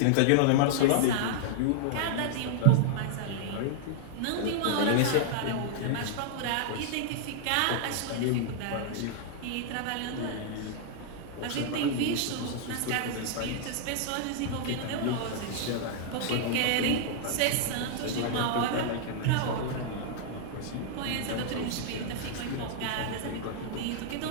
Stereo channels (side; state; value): both; different; correlation -0.01